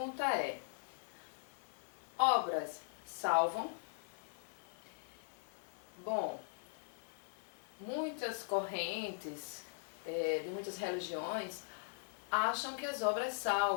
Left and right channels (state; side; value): silent; right; digital silence